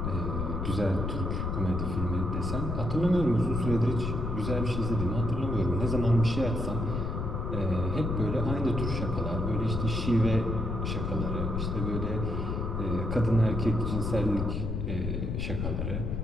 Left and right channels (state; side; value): noise; left; rumble, 2 dB below the sound